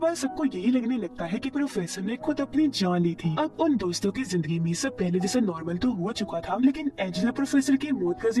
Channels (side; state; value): both; identical; correlation 1.00